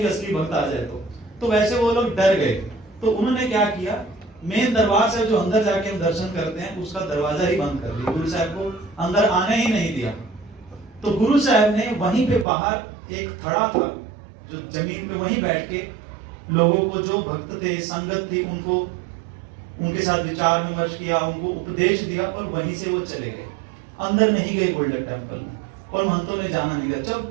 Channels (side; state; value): left; drops out; at 12.5 s